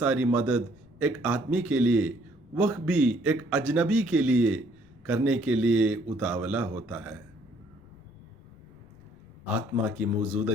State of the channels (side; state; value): left; noise; rumble, 28 dB below the sound